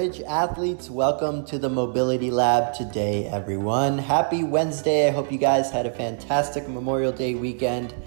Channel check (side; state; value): left; silent; 61 dB below the other